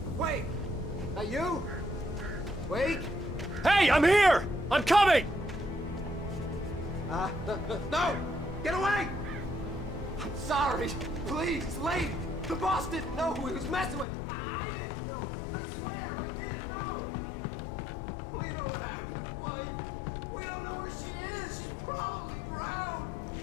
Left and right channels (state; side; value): drops out; right; at 14.1 s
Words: Wait! That you? Wake? Hey, I'm here! I'm coming! No! Get away! I'm sorry! Please, leave! The boss didn't know who he was messing with. I didn't know. I swear, I didn't know. We don't have his wife. We don't know where she is. She's probably drowned.